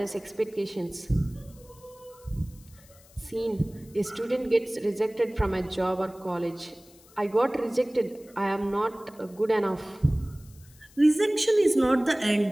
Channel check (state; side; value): noise; left; hiss, 26 dB below the sound